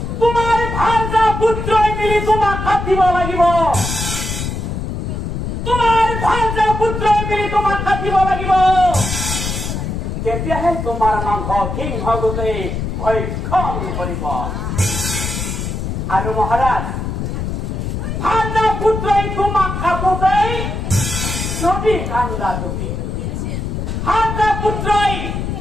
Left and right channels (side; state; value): left; noise; rumble, 3 dB below the sound